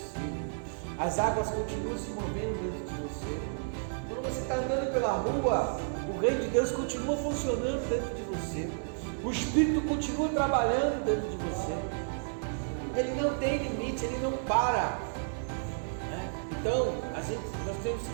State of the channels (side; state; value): left; silent; digital silence